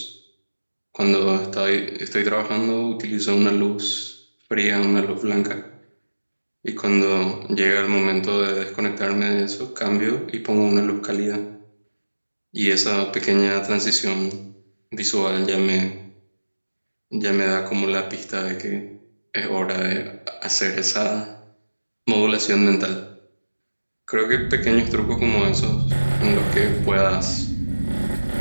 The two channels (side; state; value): both; inverted; correlation -1.00